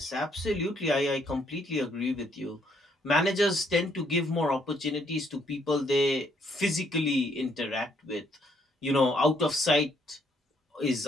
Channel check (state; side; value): normal; both; correlation 0.70